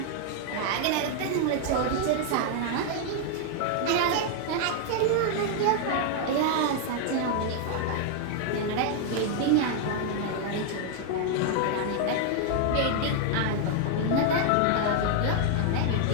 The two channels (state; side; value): different; both; correlation 0.00